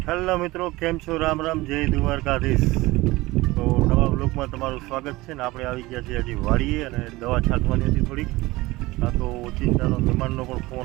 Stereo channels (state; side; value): quieter; left; 20.2 dB